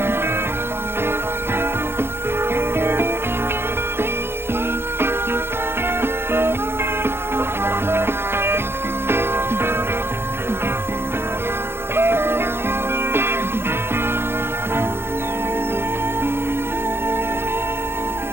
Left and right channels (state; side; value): late; left; 0.12 ms